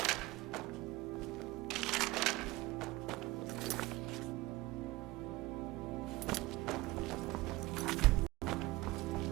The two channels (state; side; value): quieter; left; 20.0 dB